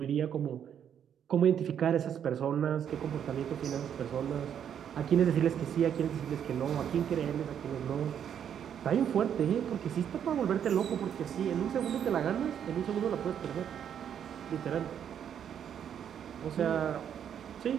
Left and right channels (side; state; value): left; quieter; 8.8 dB